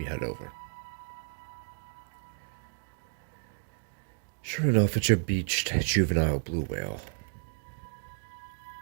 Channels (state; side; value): silent; left; 56 dB below the other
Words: head over. Sure enough, it's a beached juvenile blue whale.